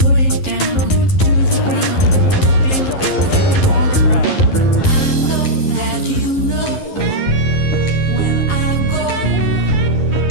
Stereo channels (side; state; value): right; late; 11 ms